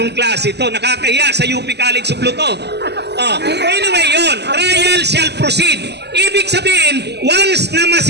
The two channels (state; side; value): late; left; 0.49 ms